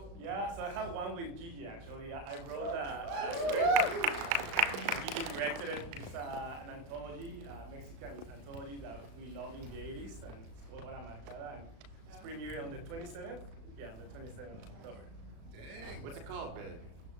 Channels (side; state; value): left; late; 35 ms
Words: Yeah, so I have one with Gigi actually. I wrote a script. Gigi directed it. It's an anthology, Mexican anthology that we love in the 80s, and it's called Hora Marcada, and it's premiering on the 27th. Yeah, on the 27th of October. Dang. What's it called, babe?